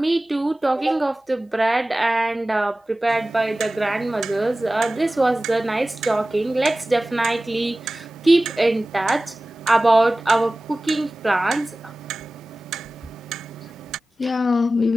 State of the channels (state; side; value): normal; both; correlation 0.97